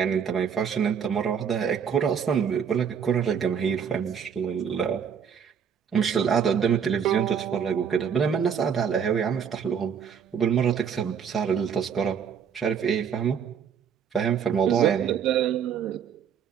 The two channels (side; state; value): left; quieter; 7.3 dB